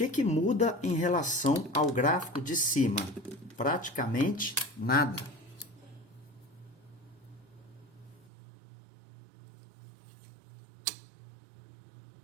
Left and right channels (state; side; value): drops out; left; at 8.3 s